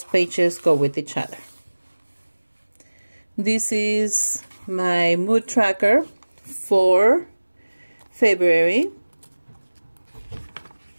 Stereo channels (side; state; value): both; inverted; correlation -1.00